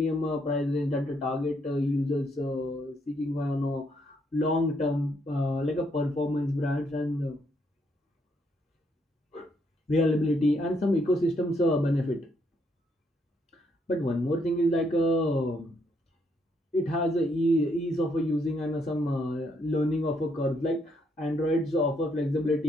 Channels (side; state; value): both; normal; correlation 0.73